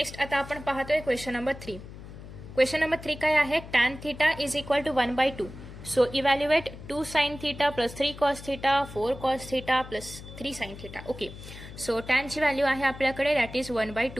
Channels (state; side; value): noise; left; hum, 14 dB below the sound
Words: आता आपण पाहतोय क्वेश्चन नंबर 3. क्वेश्चन नंबर 3 काय आहे, tan theta is equal to 1/2. So evaluate 2 sin theta plus 3 cos theta 4 cos theta plus 3 sin theta. Okay, so टॅनची व्हॅल्यू आहे आपल्याकडे दॅट इज